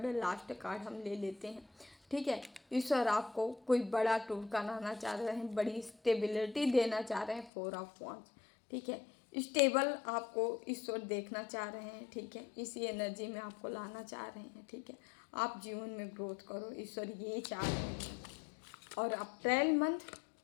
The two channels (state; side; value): drops out; right; at 7.5 s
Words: लास्ट कार्ड हम ले लेते हैं, ठीक है। ईश्वर आपको कोई बड़ा टूर कराना चाह रहे हैं, बड़ी स्टेबिलिटी देना चाह रहे हैं। 4 ऑफ वॉन्ड्स, ठीक है, स्टेबल आपको ईश्वर देखना चाह रहे हैं, ठीक है, इसी एनर्जी में आपको लाना चाह रहे हैं, ठीक है। आप जीवन में ग्रोथ करो, ईश्वर ये चाह रहे हैं। और अप्रैल मंथ